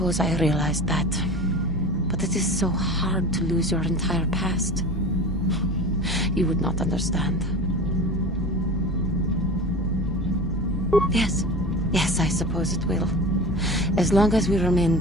I realized that. But it is so hard to lose your entire past. You would not understand. Yes. Yes, I suppose it will. As long as we remain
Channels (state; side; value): normal; both; correlation 0.33